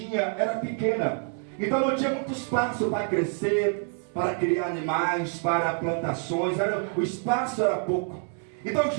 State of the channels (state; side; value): quieter; left; 38.8 dB